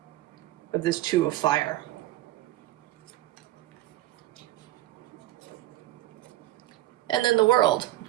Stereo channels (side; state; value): left; quieter; 15.3 dB